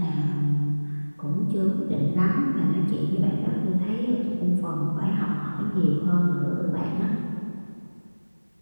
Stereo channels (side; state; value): both; inverted; correlation -1.00